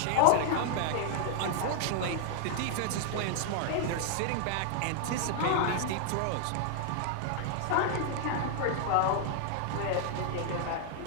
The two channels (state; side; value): different; both; correlation -0.01